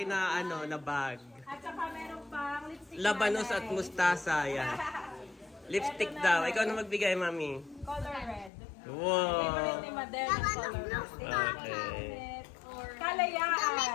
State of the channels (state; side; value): drops out; right; at 8.5 s